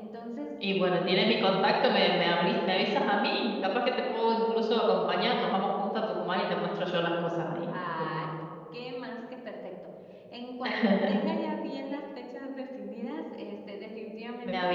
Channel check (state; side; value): identical; both; correlation 1.00